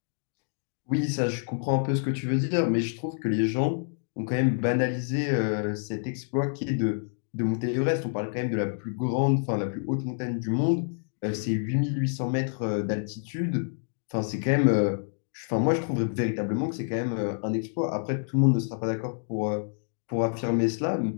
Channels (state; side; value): silent; right; digital silence